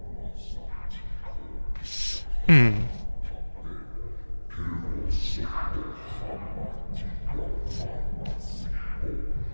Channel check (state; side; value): inverted; both; correlation -1.00